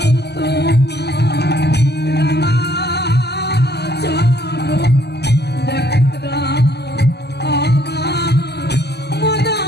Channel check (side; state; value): right; late; 0.49 ms